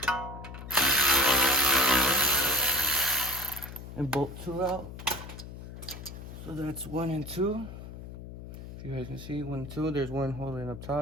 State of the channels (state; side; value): noise; left; hum, 11 dB below the sound